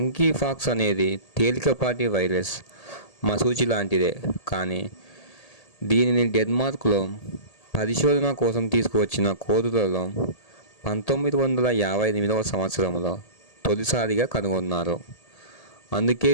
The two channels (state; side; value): late; right; 1.8 ms